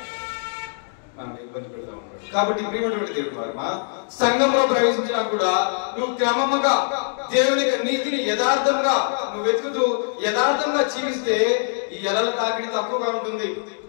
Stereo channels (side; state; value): right; silent; digital silence